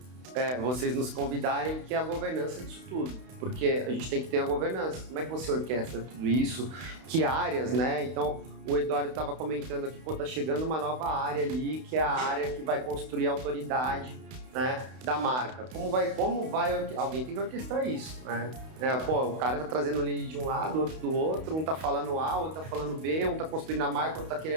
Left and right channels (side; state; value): left; late; 32 ms